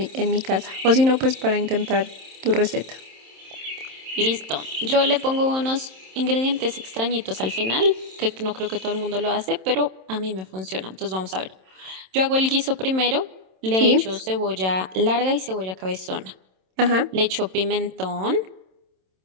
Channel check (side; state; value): left; late; 27 ms